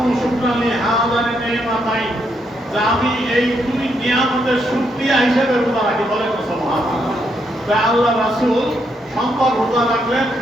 শুকরানি হাদানি নিয়ামাতাইন যে আমি এই দুই নিয়ামতের শুকরিয়া হিসেবে রোজা রাখি বলেন সুবহানাল্লাহ তাই আল্লাহ রাসূল সোমবার রোজা রাখলেন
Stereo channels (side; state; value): both; normal; correlation 0.77